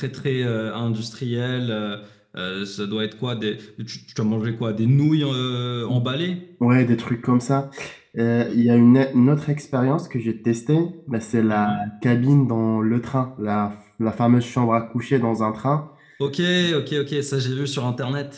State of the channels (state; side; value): identical; both; correlation 1.00